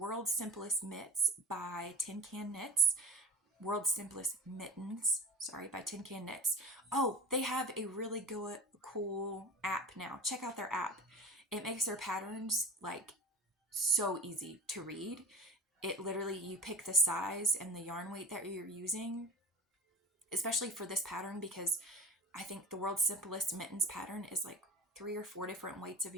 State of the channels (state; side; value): normal; both; correlation 0.37